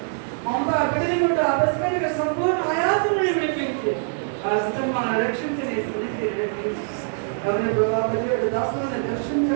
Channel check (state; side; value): silent; left; digital silence